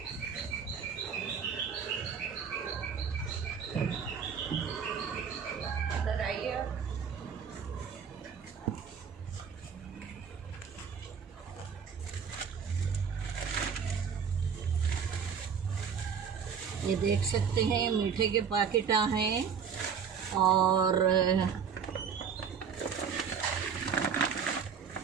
ये देख सकते हैं मीठे के पैकेट हैं, और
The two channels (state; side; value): quieter; left; 6.9 dB